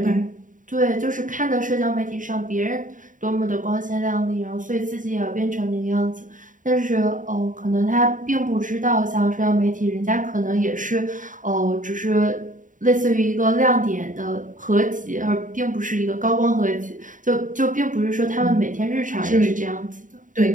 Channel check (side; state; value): left; late; 0.38 ms